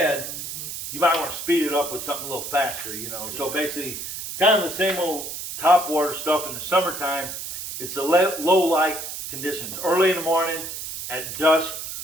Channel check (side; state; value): right; noise; hiss, 7 dB below the sound